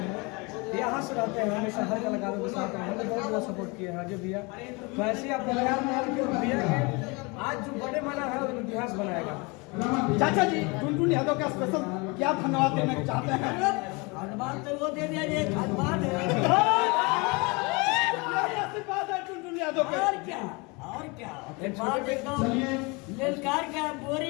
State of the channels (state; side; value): quieter; right; 28.0 dB